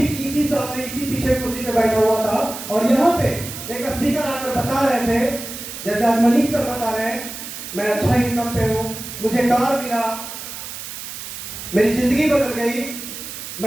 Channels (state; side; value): noise; right; hiss, 9 dB below the sound